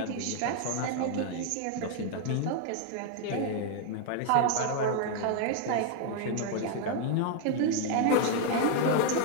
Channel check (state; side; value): different; both; correlation 0.00